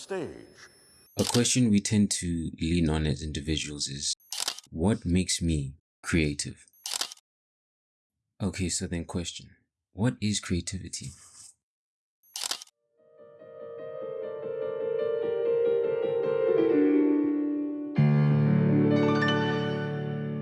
A question we tend to lean on as individuals is, what makes me creative? Okay, so then question, what is creativity?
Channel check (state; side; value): identical; both; correlation 1.00